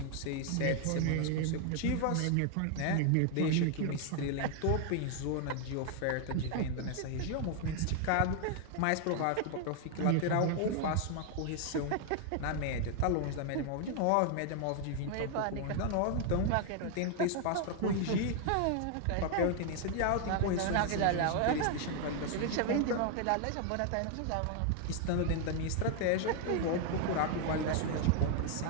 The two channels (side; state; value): both; different; correlation 0.00